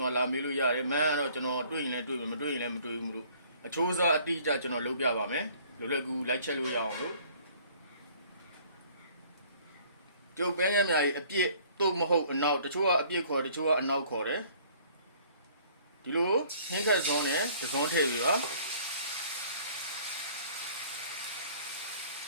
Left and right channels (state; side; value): inverted; both; correlation -0.56